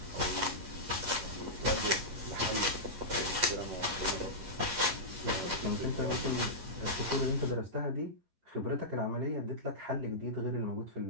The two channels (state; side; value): late; left; 11 ms